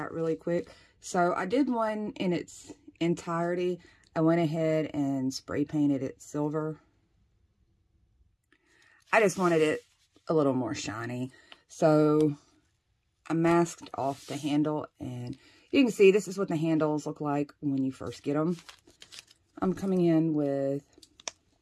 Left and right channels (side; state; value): both; identical; correlation 1.00